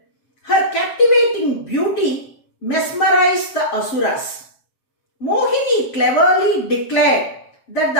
Her captivating beauty mesmerized the Asuras. Mohini cleverly declared that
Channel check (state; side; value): late; right; 7.6 ms